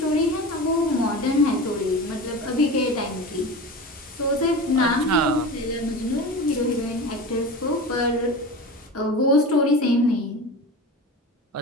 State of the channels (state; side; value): normal; both; correlation 0.30